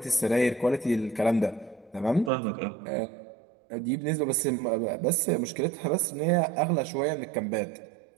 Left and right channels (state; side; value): drops out; left; at 2.3 s